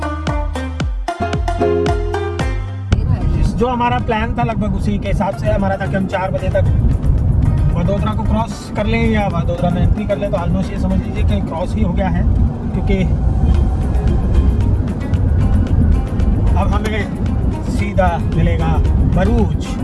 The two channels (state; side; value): identical; both; correlation 1.00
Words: जो हमारा प्लान था लगभग उसी के हिसाब से हमारा था कि हम 4 बजे तक वडोदरा को क्रॉस कर लें या वडोदरा में एंट्री कर लें। तो ऑलमोस्ट ये समझ लीजिए कि क्रॉस ही हो गया है, क्योंकि अब हमें सीधा मिलेगा भरूच।